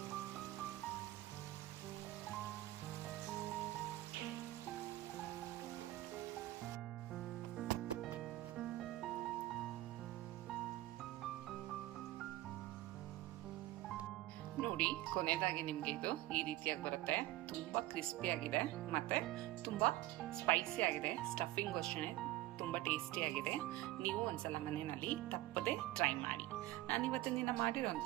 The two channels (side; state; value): left; quieter; 16.8 dB